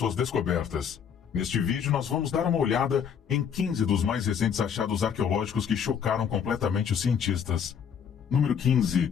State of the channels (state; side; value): quieter; right; 7.6 dB